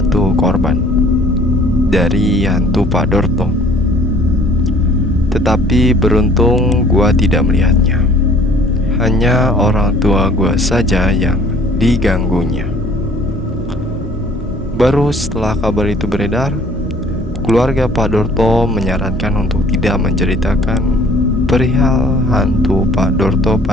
korban dari hantu Pak Dorto. Tetapi beruntung gua tidak melihatnya. Hanya orang tua gua saja yang diganggunya. Baru setelah kabar itu beredar, keluarga Pak Dorto menyarankan untuk tidak menceritakan perihal hantu Pak Dorto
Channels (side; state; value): both; normal; correlation 0.54